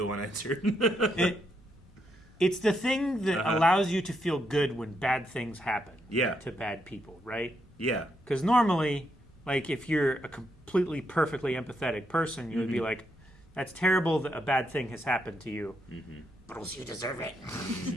unanswered. It's the thing that allows you to feel good when bad things happen Yeah. to bad people, right? Yeah. Because normally, like, if you're a completely perfectly empathetic person, you would be like, that's terrible that a bad thing has happened to you. But also you deserve it.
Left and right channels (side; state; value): right; noise; hum, 28 dB below the sound